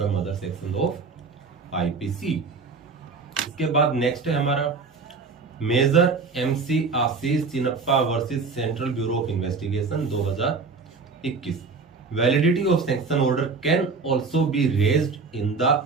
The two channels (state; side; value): quieter; left; 4.6 dB